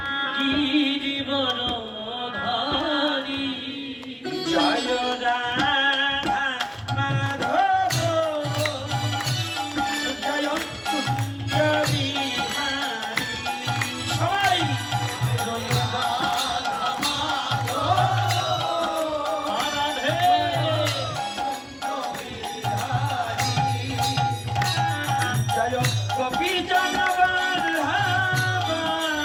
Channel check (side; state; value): both; identical; correlation 1.00